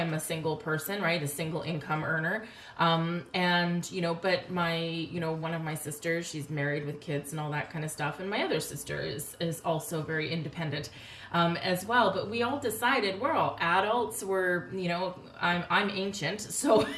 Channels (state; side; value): identical; both; correlation 1.00